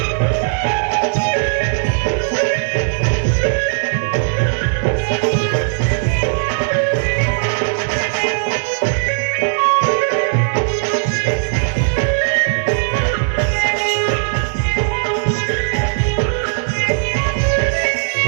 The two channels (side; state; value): left; silent; digital silence